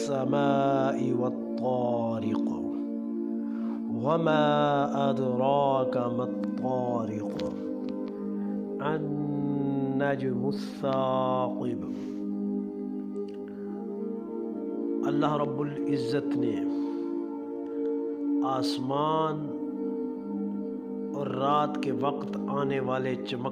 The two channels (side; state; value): both; identical; correlation 1.00